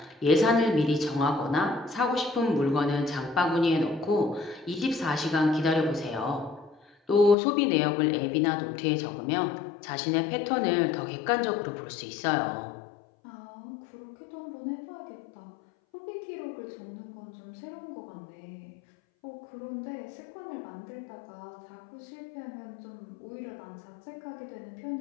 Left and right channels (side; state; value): right; drops out; at 7.4 s